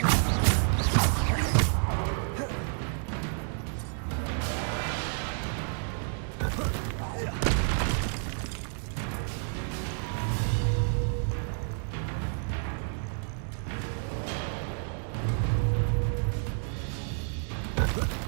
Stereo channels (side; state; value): left; silent; 58 dB below the other